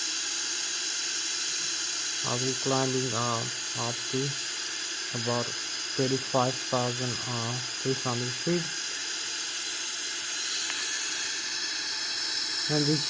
I'll be climbing up to about 35,300 feet. And this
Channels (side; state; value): both; identical; correlation 1.00